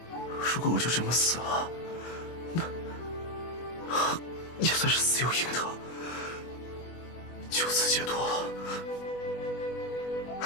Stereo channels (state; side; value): late; right; 24 ms